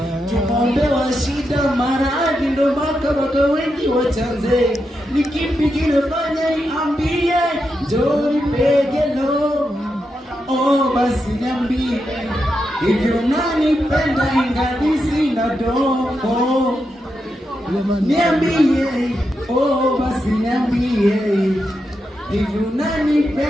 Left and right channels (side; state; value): both; normal; correlation 0.86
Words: Tumombe wa shida maradhi, ndo baka wengi wachanze. Ni kipi kinafanya iambie, njoo nipegelo. Basi niambie, hivyo unanipenda ingali sina dogo. Niambie, basi niambie, hivyo